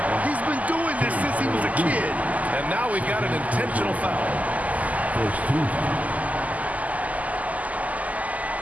He's been doing this since he was a kid. And now we've got an intentional foul. First team.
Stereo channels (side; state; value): left; late; 0.075 ms